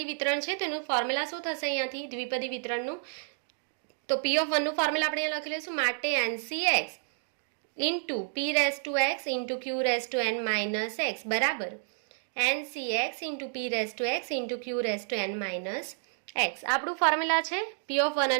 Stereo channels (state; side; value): silent; left; digital silence